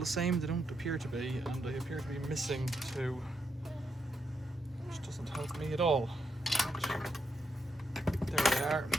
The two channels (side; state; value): both; normal; correlation 0.81